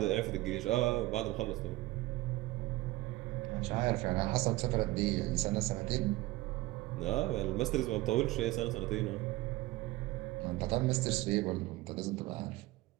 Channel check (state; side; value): quieter; left; 18.8 dB